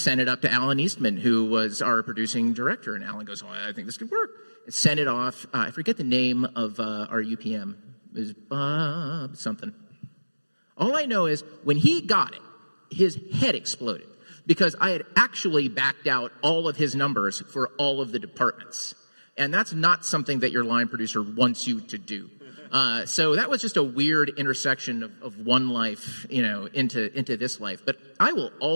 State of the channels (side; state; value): both; inverted; correlation -1.00